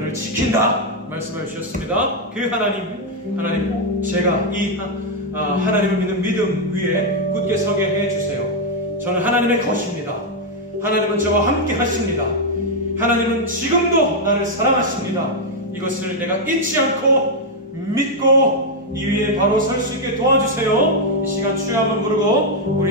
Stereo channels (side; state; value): both; normal; correlation 0.00